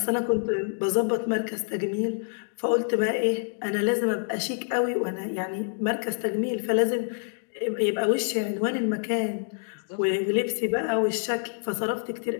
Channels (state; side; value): silent; right; digital silence